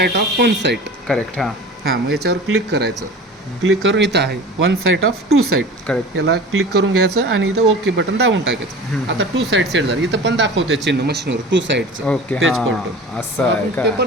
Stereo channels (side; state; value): both; normal; correlation 0.37